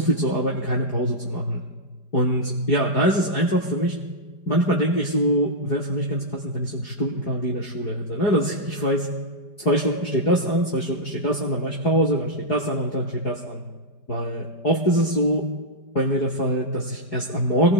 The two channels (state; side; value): late; right; 5.0 ms